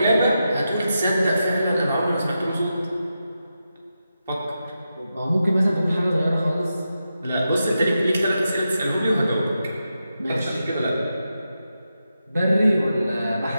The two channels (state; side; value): inverted; both; correlation -0.88